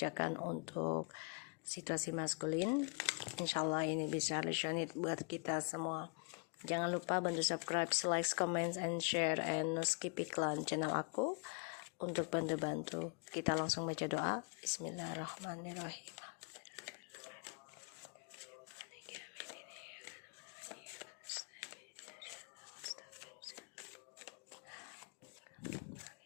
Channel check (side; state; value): right; quieter; 36.4 dB